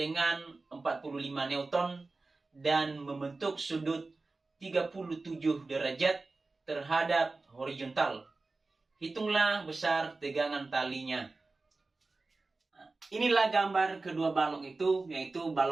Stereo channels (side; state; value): left; quieter; 3.5 dB